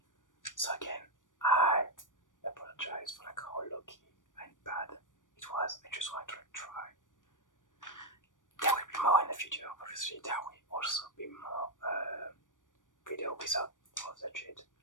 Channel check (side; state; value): right; late; 0.88 ms